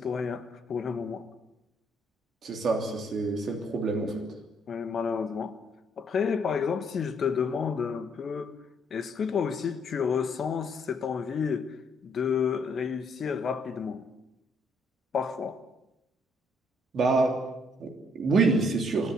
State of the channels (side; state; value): both; normal; correlation 0.69